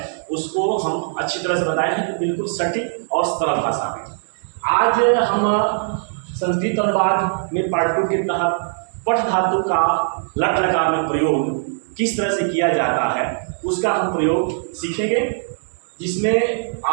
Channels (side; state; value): left; silent; 65 dB below the other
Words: उसको हम अच्छी तरह से बताए हैं, बिल्कुल सटीक और सरल भाषा में। आज हम संस्कृत अनुवाद में पार्ट 2 के तहत पठ धातु का लट लकार में प्रयोग किस तरह से किया जाता है उसका हम प्रयोग सीखेंगे, जिसमें